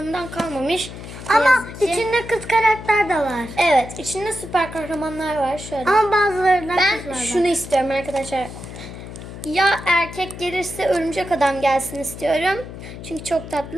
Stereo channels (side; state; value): left; noise; hum, 12 dB below the sound